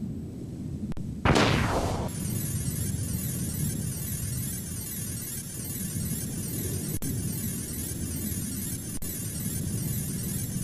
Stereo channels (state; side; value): identical; both; correlation 1.00